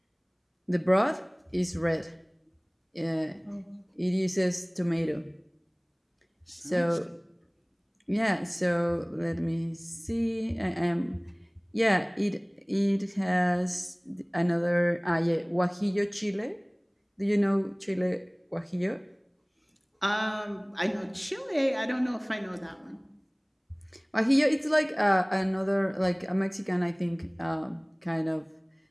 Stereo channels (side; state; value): both; identical; correlation 1.00